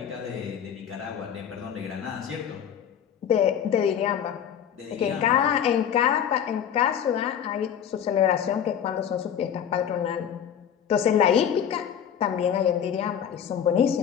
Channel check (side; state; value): right; quieter; 8.9 dB